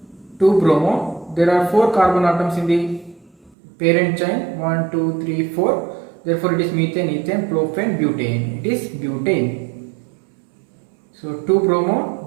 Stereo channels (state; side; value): drops out; left; at 3.6 s